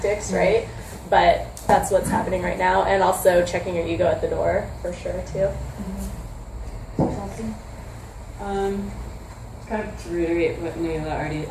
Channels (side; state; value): both; identical; correlation 1.00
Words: right? But that's what's happening right now, and also checking your ego at the door for sure too. Kind of to reiterate what Nayla already